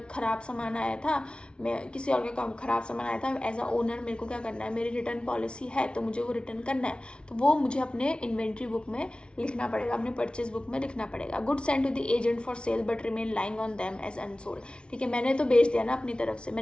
ख़राब सामान आया था, मैं किसी और का ख़राब सामान आया था, एज अ ओनर मेरे को क्या करना है, मेरी रिटर्न पॉलिसी है तो मुझे वो रिटर्न करना है, तो वो मुझे अपने इन्वेंट्री बुक में लिखना पड़ेगा, अपने परचेज बुक में लिखना पड़ेगा। Good send to the agent for sale but remain lying on them as unsold. ठीक है, मैंने तो बेच दिया ना अपनी तरफ से,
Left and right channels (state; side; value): late; right; 0.057 ms